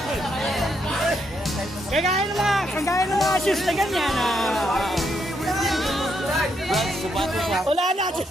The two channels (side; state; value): both; normal; correlation 0.77